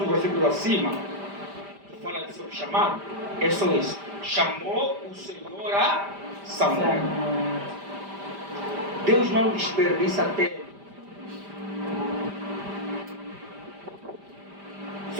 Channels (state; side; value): late; left; 5.0 ms